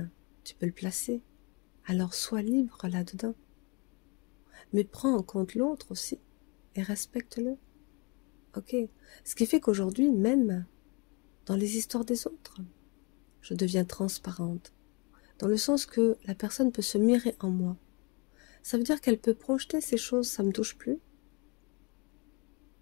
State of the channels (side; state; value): right; quieter; 31.0 dB